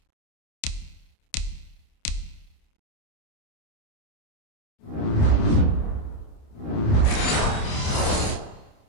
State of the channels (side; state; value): right; late; 28 ms